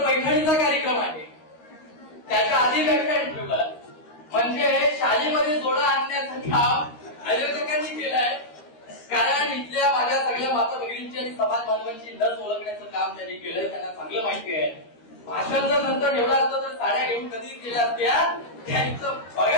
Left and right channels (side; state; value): right; late; 13 ms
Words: पैठणीचा कार्यक्रम आहे, त्याच्या आधी व्याख्यान ठेवलं. म्हणजे शाळेमध्ये जोडा आणण्याचं काम आयोजकांनी केलंय. कारण इथल्या माझ्या सगळ्या माता भगिनींची आणि समाज बांधवांची लस ओळखण्याचं काम त्यांनी केलंय, त्यांना चांगलं माहिती आहे. भाषण जर नंतर एवढं असतं तर साड्या घेऊन कधी केल्या असत्या, त्यांचं